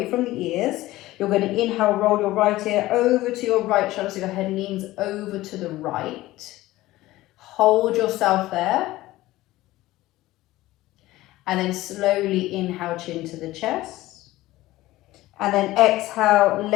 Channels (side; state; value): right; quieter; 17.2 dB